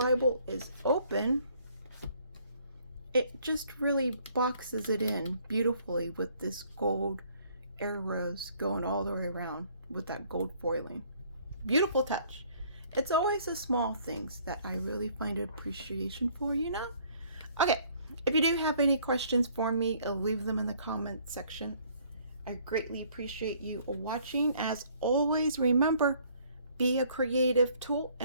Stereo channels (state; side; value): inverted; both; correlation -0.61